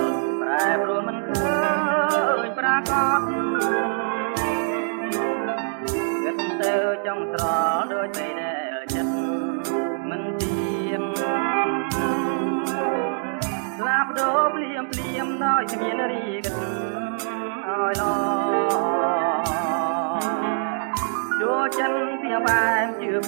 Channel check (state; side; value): silent; left; digital silence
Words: ប្រែប្រួលមិនឃើញប្រកបគិតទៅចង់ត្រល់ដូចតែចិត្តមិនទៀងស្លាប់ដូរភ្លាមភ្លាមដោយគ្មានរីកឲ្យឡចូលចិនពីបែបជឿ